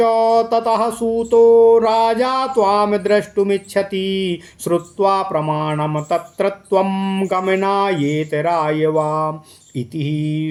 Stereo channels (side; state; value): both; identical; correlation 1.00